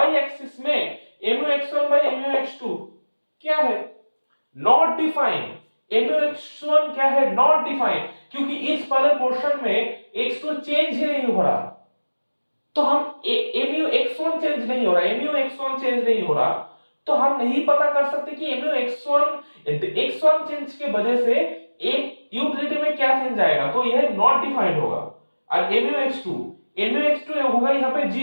एक्सिस में MUX1 by MUX2 क्या है? Not defined. MUX1 क्या है? नॉट डिफाइंड, क्योंकि इस वाले पोर्शन में x2 चेंज ही नहीं हो रहा। तो हम MUX1 चेंज नहीं हो रहा, MUX1 चेंज नहीं हो रहा, तो हम नहीं पता कर सकते कि x1 चेंज के वजह से एक यूटिलिटी में क्या चेंज आएगा, तो यह नॉट डिफाइंड होगा। और MUX2 होगा यहाँ पे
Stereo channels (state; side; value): inverted; both; correlation -1.00